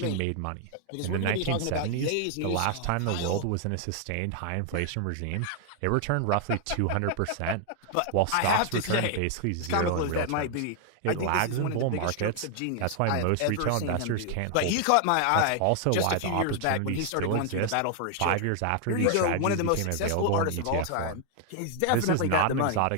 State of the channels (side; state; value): both; different; correlation 0.00